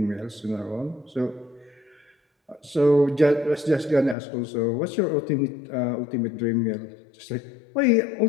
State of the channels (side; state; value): right; drops out; at 4.2 s